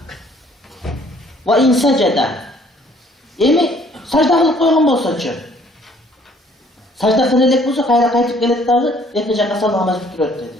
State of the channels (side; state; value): both; normal; correlation 0.60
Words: وَاِنْ سَجَدَ. Emi sajda kılıp koygan bolsa çö. Sajda kılelek bolsa kayra kaytıp gelet dağı 2 jaka salam namaz bitiröt dedi.